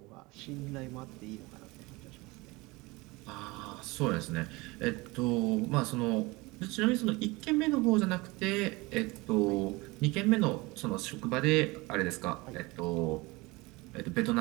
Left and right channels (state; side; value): quieter; left; 23.4 dB